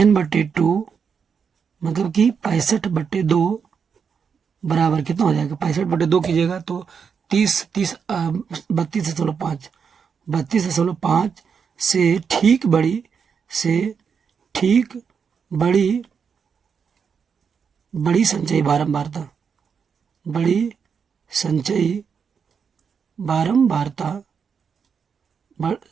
मतलब कि 65/2 बराबर कितना हो जाएगा। 65/2 कीजिएगा तो 32.5 32.5 से ठीक बड़ी संचयी बारंबारता बड़ी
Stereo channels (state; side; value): quieter; left; 6.4 dB